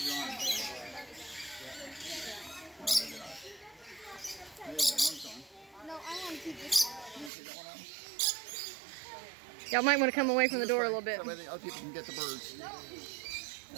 your arm. Oh, maybe not. There you go, one's on. No, I want to keep this one. You want to take that one on? Y'all might want to come away from the door a little bit. So the other people can get the birds.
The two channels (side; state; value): left; drops out; at 7.3 s